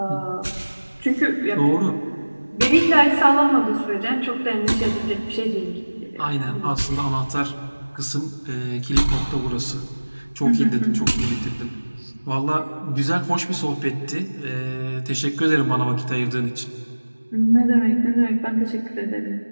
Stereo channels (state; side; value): inverted; both; correlation -1.00